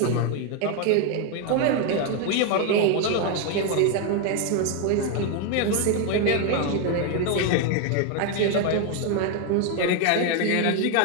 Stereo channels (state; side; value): different; both; correlation 0.01